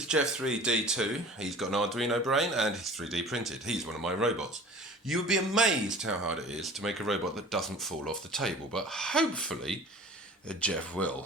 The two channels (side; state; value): both; normal; correlation 0.43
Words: Jeff3D2. He's got an Arduino brain and he's 3D printed. He's one of my robots. You would be amazed how hard it is to make a robot that doesn't fall off the table, but hopefully Jeff